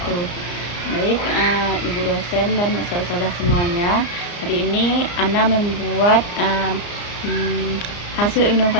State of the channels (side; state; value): right; late; 34 ms